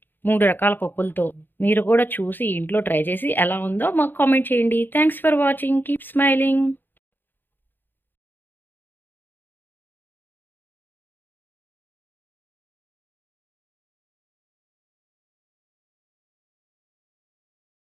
3 రకాల పప్పులతో. మీరు కూడా చూసి ఇంట్లో ట్రై చేసి ఎలా ఉందో మాకు కామెంట్ చేయండి. Thanks for watching. Keep smiling.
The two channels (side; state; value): right; late; 0.094 ms